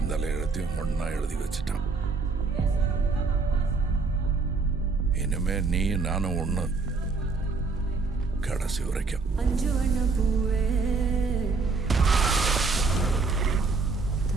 தலை எழுத்தையும் ஒன்னா எழுதி வச்சுட்டான். இனிமே நீ நானும் ஒண்ணு, கடைசி வரைக்கும்.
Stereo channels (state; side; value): quieter; left; 4.3 dB